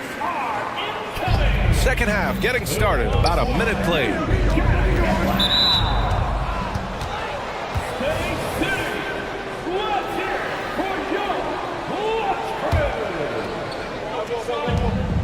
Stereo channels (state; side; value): identical; both; correlation 1.00